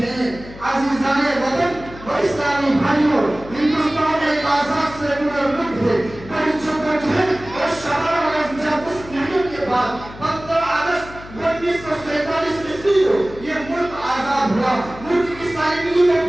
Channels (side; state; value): left; noise; hum, 16 dB below the sound